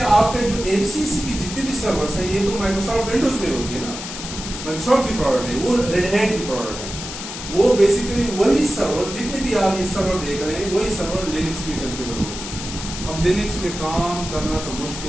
کے جو MCC کی جتنے بھی سرورس ہیں یہ تو مائیکروسافٹ ونڈوز میں ہوتی ہے نا، مائیکروسافٹ کی پروڈکٹ ہے، وہ ریڈ ہیٹ کی پروڈکٹ ہے. وہ بیسیکلی وہی سرور جتنے بھی آپ یہ سرور دیکھ رہے ہیں وہی سرور لینکس میں کنفیگر ہوتی ہے. اب لینکس میں کام کرنا تو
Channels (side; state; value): left; noise; hiss, 9 dB below the sound